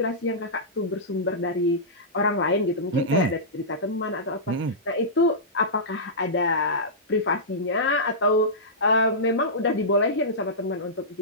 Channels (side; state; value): both; normal; correlation -0.15